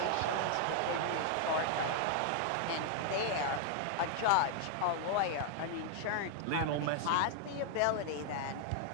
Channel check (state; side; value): different; both; correlation 0.00